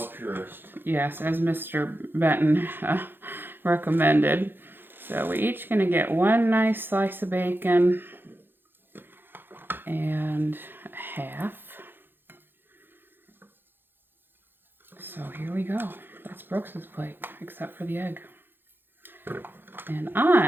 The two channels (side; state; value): left; late; 0.10 ms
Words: Yes, as Mr. Benton recommended. So we're each going to get one nice slice of bacon and a half. So here we go. That's Brooks's plate, except for the egg. And